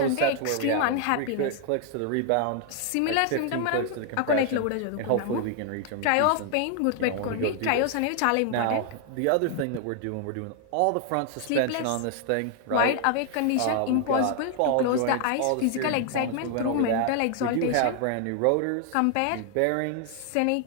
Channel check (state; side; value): different; both; correlation 0.00